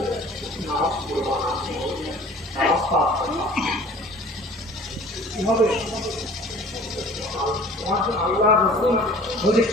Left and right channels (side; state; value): both; normal; correlation 0.48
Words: কি হবে? আল্লাহ রাসূল বলছে